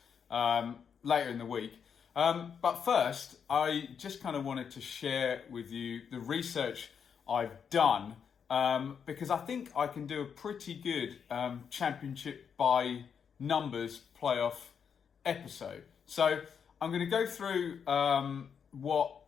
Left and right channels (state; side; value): quieter; right; 7.0 dB